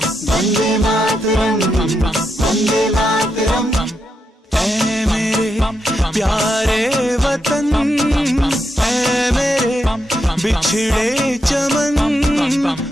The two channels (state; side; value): normal; both; correlation 0.83